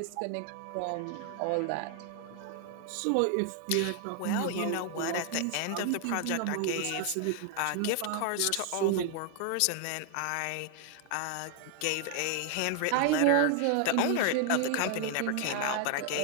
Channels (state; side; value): different; both; correlation 0.00